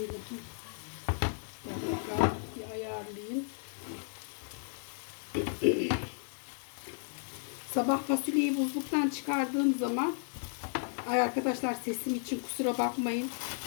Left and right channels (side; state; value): right; silent; 55 dB below the other